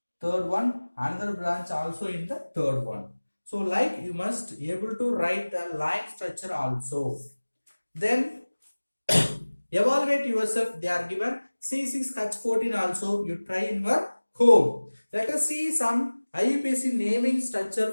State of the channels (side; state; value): both; inverted; correlation -1.00